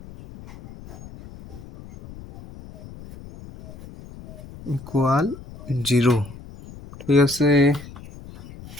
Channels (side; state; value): left; noise; rumble, 17 dB below the sound